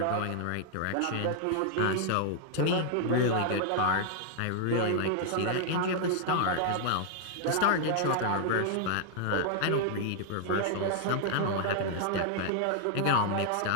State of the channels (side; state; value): both; different; correlation -0.01